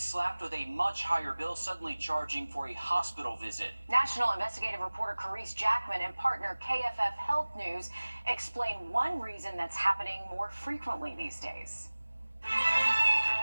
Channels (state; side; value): inverted; both; correlation -1.00